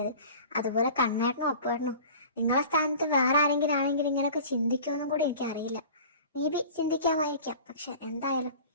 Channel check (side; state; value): both; inverted; correlation -0.41